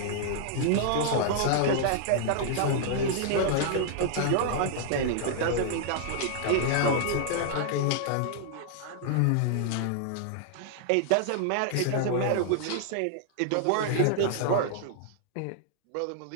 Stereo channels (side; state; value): both; different; correlation -0.01